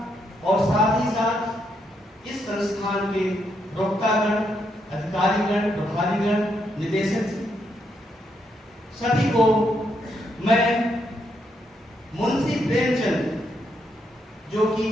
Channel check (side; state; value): both; normal; correlation 0.78